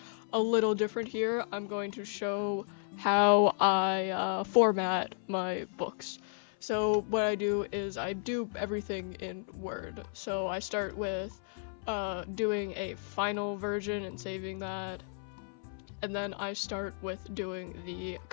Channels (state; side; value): silent; right; 56 dB below the other